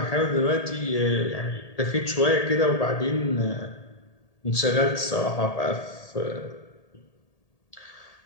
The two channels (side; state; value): right; late; 1.8 ms